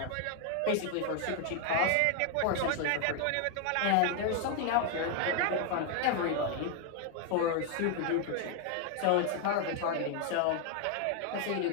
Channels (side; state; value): both; different; correlation 0.00